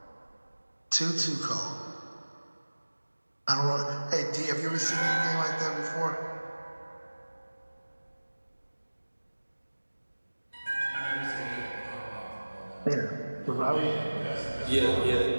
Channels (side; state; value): both; inverted; correlation -1.00